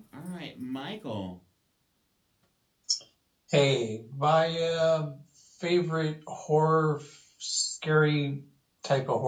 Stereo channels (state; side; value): identical; both; correlation 1.00